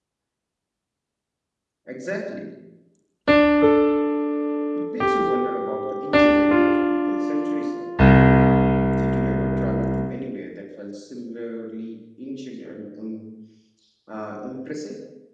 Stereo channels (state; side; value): identical; both; correlation 1.00